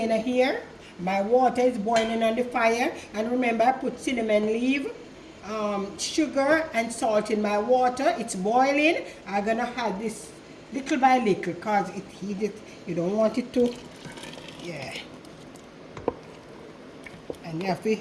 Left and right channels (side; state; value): both; identical; correlation 1.00